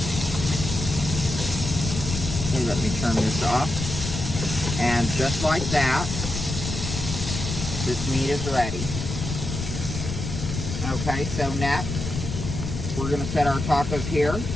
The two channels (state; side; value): noise; left; rumble, 5 dB below the sound